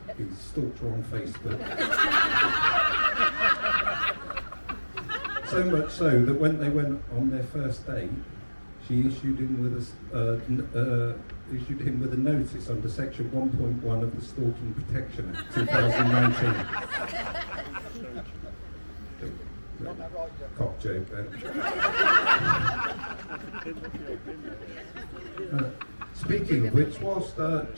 He stalked her on Facebook. So much so that when they went on their first date, she issued him with a notice under section 1.1 of the Stalking Protection Act 2019. Cock joke then. Speaking of which, whilst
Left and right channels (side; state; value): both; inverted; correlation -1.00